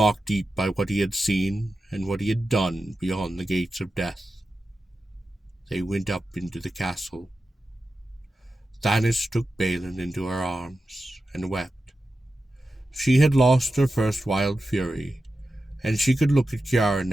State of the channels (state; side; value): normal; both; correlation 0.92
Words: deep by what he had seen and what he had done beyond the gates of death. They went up into the castle. Thanis took Balin into her arms and wept. She had lost her first wild fury, and she could look at Kiara